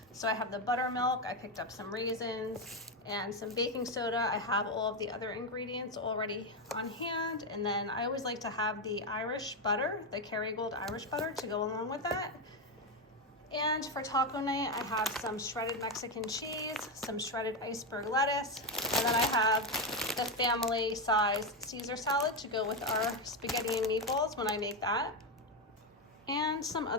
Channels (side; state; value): both; normal; correlation 0.09